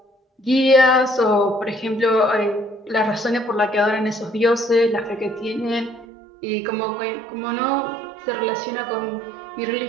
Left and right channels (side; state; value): left; drops out; at 6.1 s